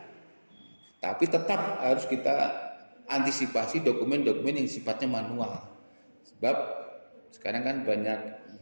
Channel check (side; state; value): both; inverted; correlation -1.00